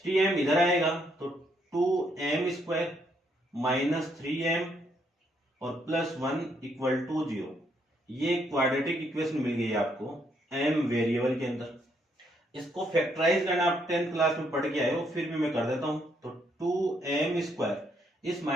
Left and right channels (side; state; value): both; normal; correlation 0.73